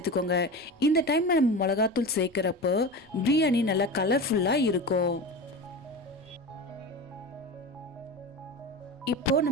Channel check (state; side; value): noise; right; rumble, 30 dB below the sound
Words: இந்த டைம்ல நம்ம மிளகாத்தூள் சேர்க்கிறப்போ பிரியாணி நல்லா கலர்ஃபுல்லாக இருக்கும். இப்போ